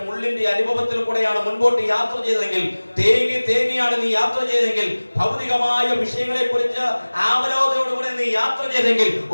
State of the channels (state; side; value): inverted; both; correlation -1.00